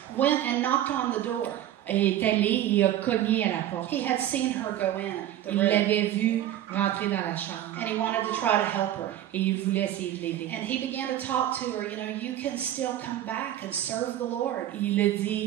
went and knocked on the door. est allé et a cogné à la porte. He had seen her go in the Il room l'avait vue rentrer dans la chambre. and he wanted to try to help her. Et il voulait essayer de l'aider. And he began to talk to her, you can still come back and serve the Lord. Il a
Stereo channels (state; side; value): quieter; left; 12.3 dB